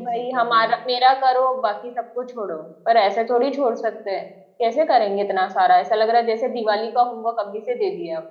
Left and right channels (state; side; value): identical; both; correlation 1.00